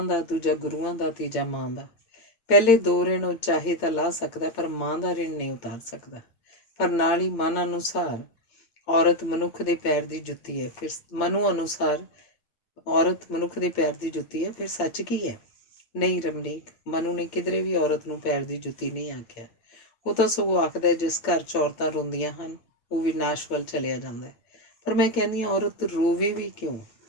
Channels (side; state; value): right; late; 8.7 ms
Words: ਦਾ, ਦੂਜਾ ਗੁਰੂਆਂ ਦਾ, ਤੀਜਾ ਮਾਂ ਦਾ। ਪਹਿਲੇ 2 ਰਿਣ ਉਹ ਚਾਹੇ ਤਾਂ ਲਾ ਸਕਦਾ ਪਰ ਮਾਂ ਦਾ ਰਿਣ ਨਹੀਂ ਉਤਾਰ ਸਕਦਾ। ਪਰ ਨਾਲ ਹੀ ਮਨ ਅਨੁਸਾਰ ਔਰਤ ਮਨੁੱਖ ਦੇ ਪੈਰ ਦੀ ਜੁੱਤੀ ਹੈ। ਫਿਰ ਮਨੂ ਅਨੁਸਾਰ ਔਰਤ ਮਨੁੱਖ ਦੇ ਪੈਰ ਦੀ ਜੁੱਤੀ ਹੈ। ਫਿਰ ਸੱਚ ਕੀ ਹੈ? ਨਹੀਂ ਰਮਨੀਕ, ਮਨੂ ਨੇ ਕਿਧਰੇ ਵੀ ਔਰਤ ਨੂੰ ਪੈਰ ਦੀ ਜੁੱਤੀ ਨਹੀਂ ਆਖਿਆ। ਉਹ ਤਾਂ ਸਗੋਂ ਆਖਦਾ ਜਿਸ ਘਰ 'ਚ ਔਰਤਾਂ ਰੋਂਦੀਆਂ ਹਨ ਉਹ ਵਿਨਾਸ਼ ਵੱਲ ਚਲਿਆ ਜਾਂਦਾ ਹੈ। ਪਰ ਮੈਂ ਕਹਿੰਦੀ ਹਾਂ ਔਰਤ ਰੋਵੇ ਵੀ ਕਿਉਂ?